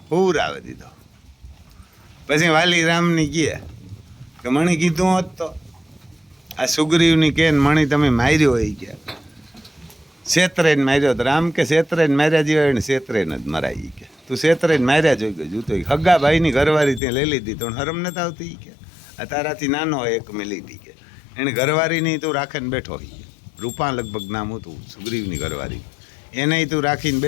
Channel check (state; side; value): drops out; right; at 17.0 s